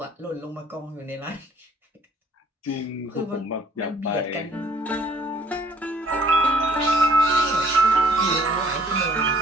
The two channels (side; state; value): both; normal; correlation 0.59